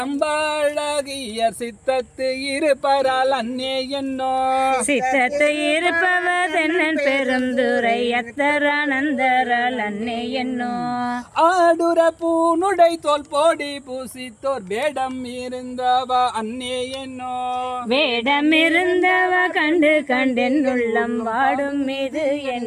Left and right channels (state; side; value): identical; both; correlation 1.00